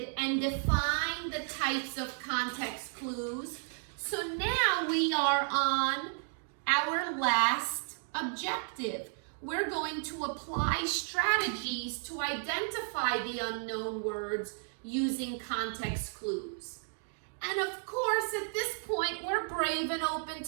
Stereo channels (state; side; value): silent; left; 56 dB below the other